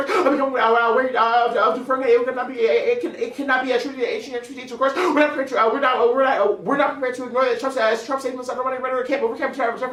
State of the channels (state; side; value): identical; both; correlation 1.00